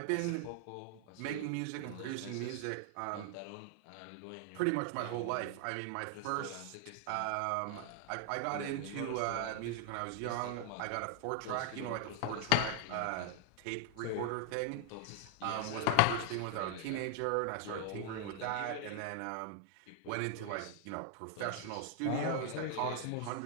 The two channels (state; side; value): different; both; correlation 0.00